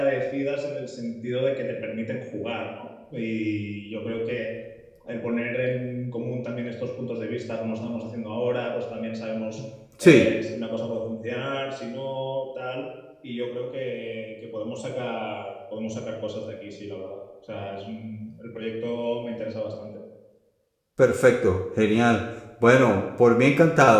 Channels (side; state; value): both; identical; correlation 1.00